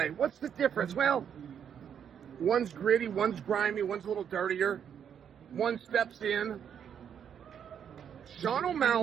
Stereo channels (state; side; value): quieter; left; 8.3 dB